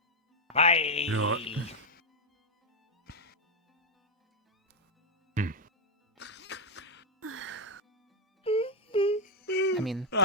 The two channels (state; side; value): normal; both; correlation -0.01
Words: Bye. You know what? I mean,